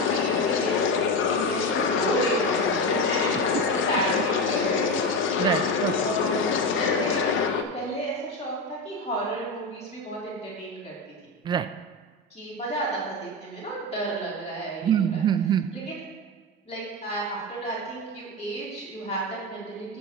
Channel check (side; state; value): both; normal; correlation 0.16